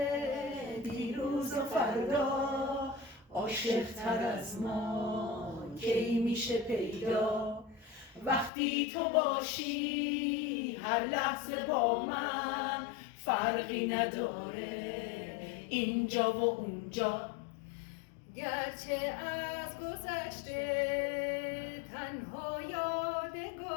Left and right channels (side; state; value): right; drops out; at 8.5 s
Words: دیروز و فردا، عاشق تر از ما کی میشه پیدا؟ وقتی تو باشی هر لحظه با من، فرقی نداره اینجا و اونجا. گرچه از گذشته تنها